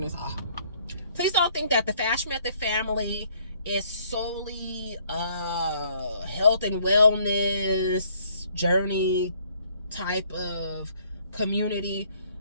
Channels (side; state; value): both; inverted; correlation -0.64